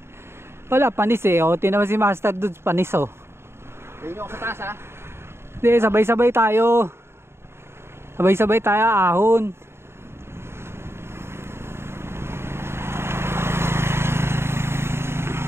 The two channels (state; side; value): late; left; 0.12 ms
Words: Wala, panis eh. O, tinaman si Master Dudes, panis oh. Tingin nyo ako sa taas, ha? Hindi, sabay-sabay tayo. Sabay-sabay tayo, ahon.